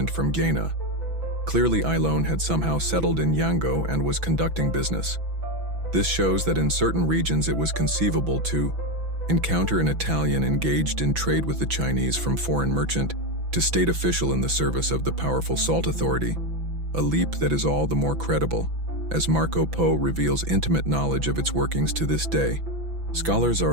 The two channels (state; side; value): late; left; 6.0 ms